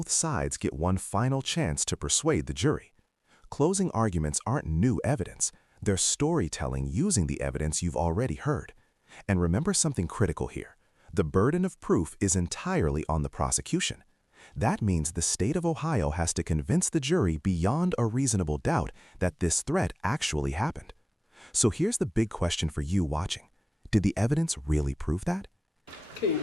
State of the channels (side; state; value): both; normal; correlation 0.98